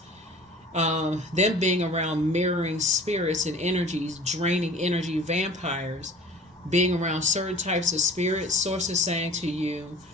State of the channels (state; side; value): normal; both; correlation 0.44